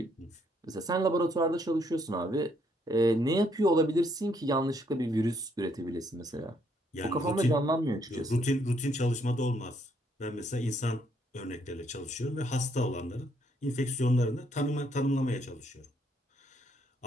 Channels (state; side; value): normal; both; correlation 0.71